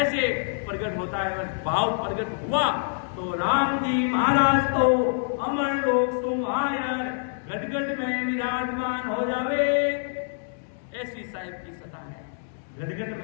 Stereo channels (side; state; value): right; silent; digital silence